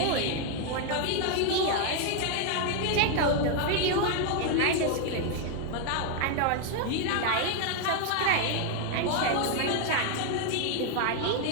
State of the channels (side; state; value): both; different; correlation 0.01